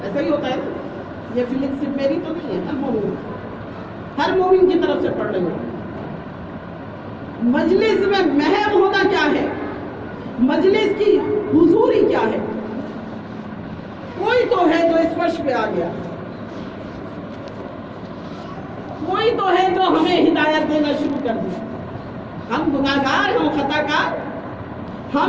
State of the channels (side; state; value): both; identical; correlation 1.00